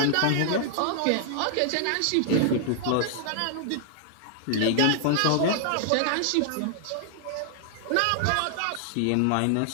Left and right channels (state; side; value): different; both; correlation 0.00